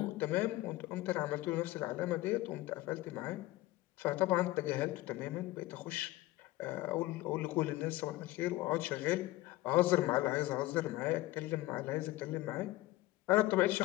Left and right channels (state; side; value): quieter; right; 17.9 dB